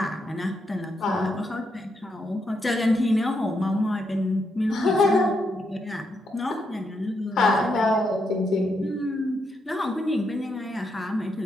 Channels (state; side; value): normal; both; correlation 0.80